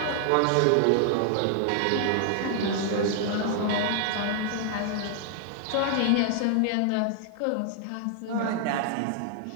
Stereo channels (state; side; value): different; both; correlation 0.00